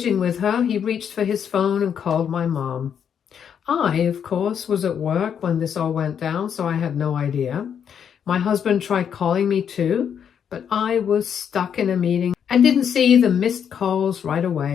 with her, he reached for his phone and called my mom. I, of course, was at work when this all went down, so I had no idea. My husband tried calling me too, but I was stuck in a meeting and didn't see the missed calls right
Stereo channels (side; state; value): right; quieter; 8.1 dB